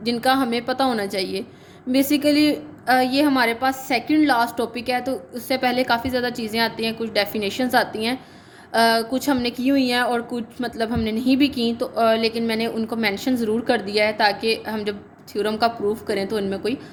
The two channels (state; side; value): identical; both; correlation 1.00